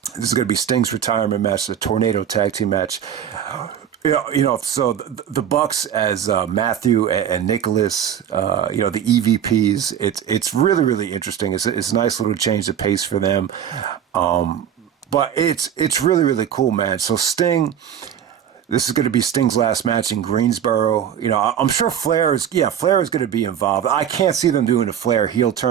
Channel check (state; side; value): quieter; left; 9.3 dB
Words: This is going to be Sting's retirement match, the Tornado Tag Team match. So the Bucks as Matthew and Nicholas, the EVPs. It's really, really interesting. It's a nice little change of pace for them. But it's really, really cool, man. So Sting, this is going to be Sting's last match in Greensboro. I'm sure Flair is going to be involved. I can't see them doing a Flair heel